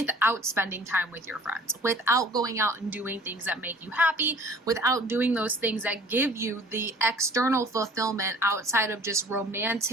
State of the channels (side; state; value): both; normal; correlation 0.50